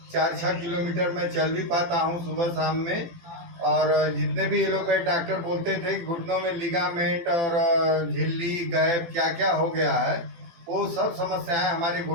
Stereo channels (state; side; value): late; left; 18 ms